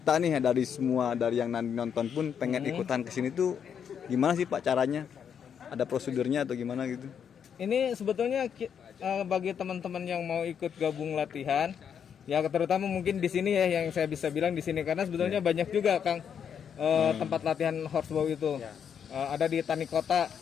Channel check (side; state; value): right; quieter; 7.8 dB